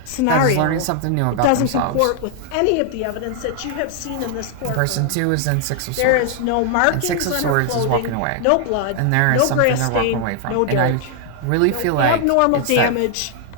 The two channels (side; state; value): both; different; correlation 0.00